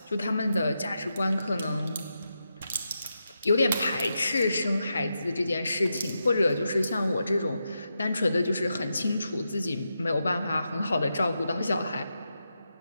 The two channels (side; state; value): both; inverted; correlation -0.86